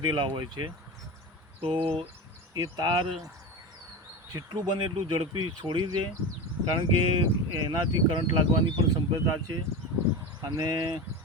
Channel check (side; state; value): both; normal; correlation 0.24